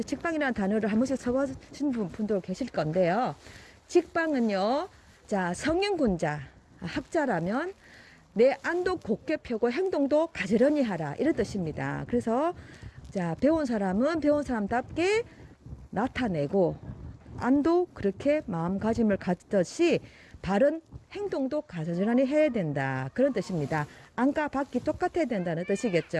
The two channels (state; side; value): identical; both; correlation 1.00